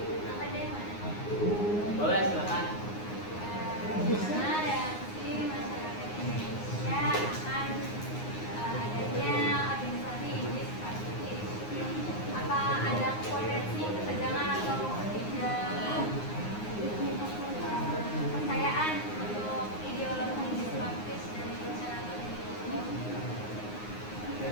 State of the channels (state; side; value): late; right; 9.6 ms